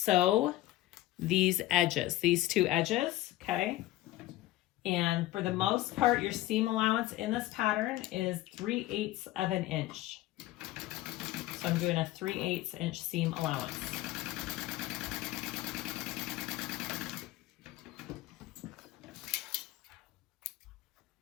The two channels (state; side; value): quieter; right; 16.1 dB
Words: these edges, these 2 edges, okay? And for the most part, your seam allowance in this pattern is 3/8 of an inch. So I'm doing a 3/8 inch seam allowance.